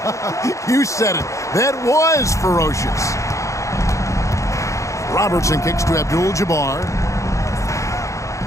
You said it. That was ferocious. Robertson kicks to Abdul-Jabbar.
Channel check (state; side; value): late; right; 0.15 ms